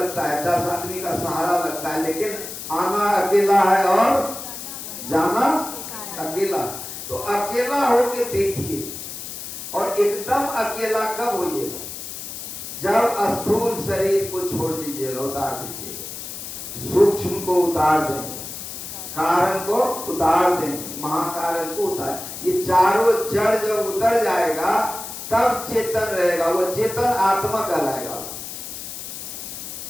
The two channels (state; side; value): noise; left; hiss, 9 dB below the sound